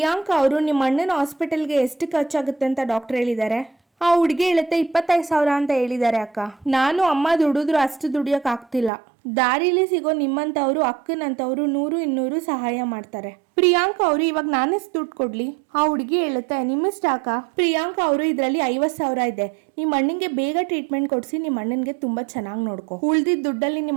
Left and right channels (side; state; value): left; drops out; at 8.9 s